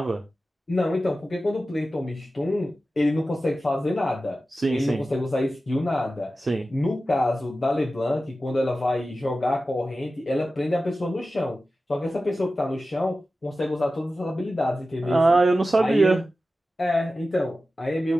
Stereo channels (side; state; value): both; normal; correlation 0.94